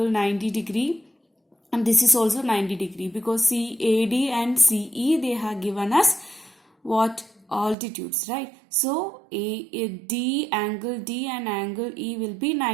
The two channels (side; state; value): left; drops out; at 7.8 s